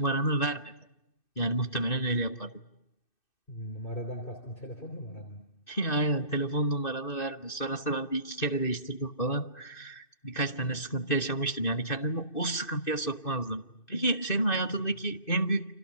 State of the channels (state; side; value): late; right; 2.6 ms